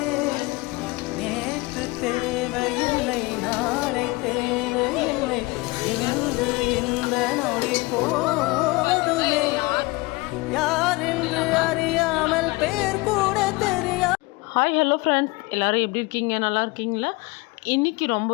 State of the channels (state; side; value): quieter; right; 23.8 dB